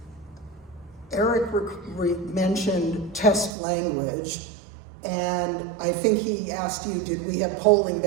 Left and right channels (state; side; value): drops out; left; at 3.5 s